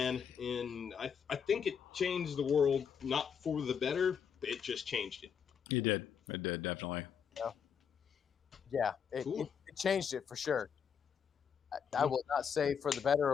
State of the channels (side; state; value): right; quieter; 7.2 dB